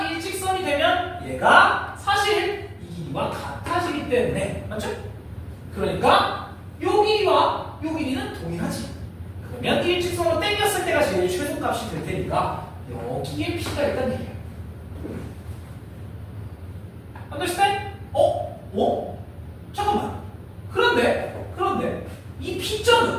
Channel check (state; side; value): identical; both; correlation 1.00